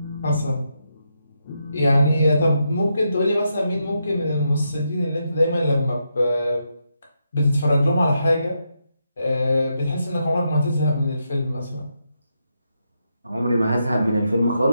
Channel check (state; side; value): inverted; both; correlation -0.82